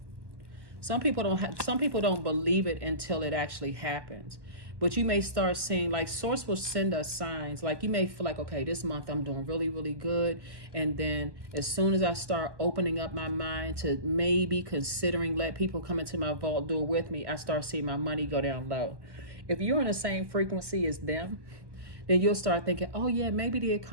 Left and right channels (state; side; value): late; left; 1.1 ms